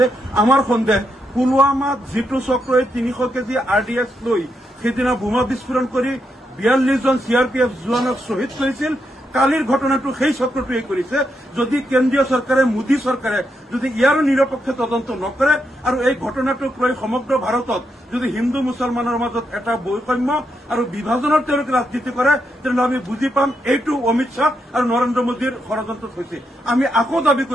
আমাৰ সন্দেহ পুলৱামাত যেটো চক্ৰই 300 কেজি RDX লৈ সেইদিনা বোমা বিস্ফোৰণ কৰি 42 জন CRPF জোৱানক শ্বহীদ কৰিছিল, কালিৰ ঘটনাটো সেই চক্ৰটোৱে কৰিছে। যদি কেন্দ্ৰীয় চৰকাৰে মোদী চৰকাৰে যদি ইয়াৰো নিৰপেক্ষ তদন্ত নকৰে আৰু এই ঘটনাটোক লৈ সমগ্ৰ ভাৰতত যদি হিন্দু মুছলমানৰ মাজত এটা বৈষম্য আৰু বিভাজনৰ তেওঁলোকে ৰাজনীতি কৰে তেনেহ'লে আমি বুজি পাম এইটো অমিত শ্বাহ আৰু নৰেন্দ্ৰ মোদীৰ ষড়যন্ত্ৰত হৈছে। আমি আকৌ দাবী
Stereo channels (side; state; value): both; normal; correlation 0.81